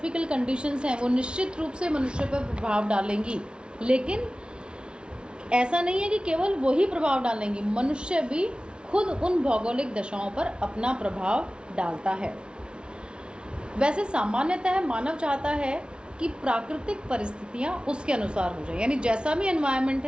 कंडीशंस हैं वो निश्चित रूप से मनुष्य पर प्रभाव डालेंगी, लेकिन ऐसा नहीं है कि केवल वही प्रभाव डालेंगी, मनुष्य भी खुद उन भौगोलिक दशाओं पर अपना प्रभाव डालता है। वैसे सामान्यतः मानव चाहता है कि प्राकृतिक परिस्थितियाँ उसके अनुसार हो जाए, यानी जैसा भी एनवायरनमेंट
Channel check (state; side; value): late; left; 0.056 ms